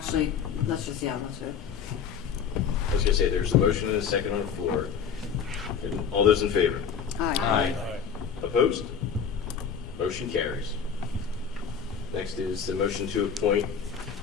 let's do it. I was going to say, there's a motion and a second on the floor. And all those in favor? Aye. Opposed? Motion carries. Next is the motion to appoint.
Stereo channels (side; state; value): right; quieter; 6.9 dB